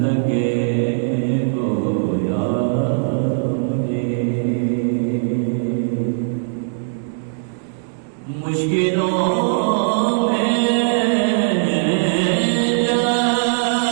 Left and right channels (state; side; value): silent; left; digital silence